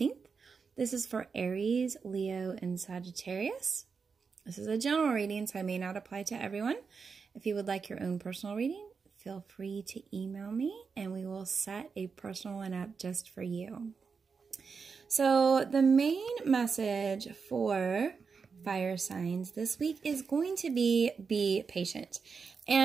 This is for Aries, Leo, and Sagittarius. This is a general reading, so I may not apply to everyone. If you would like your own personal reading, feel free to email me and we will set a personal one up just for you. So the main message for fire signs this week is going to be patient.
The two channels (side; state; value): left; quieter; 5.4 dB